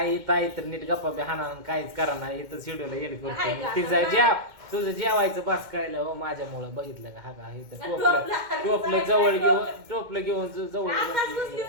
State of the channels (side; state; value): left; late; 2.1 ms